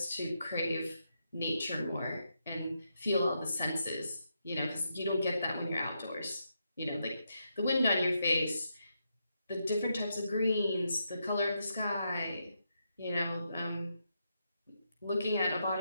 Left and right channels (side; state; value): both; inverted; correlation -0.82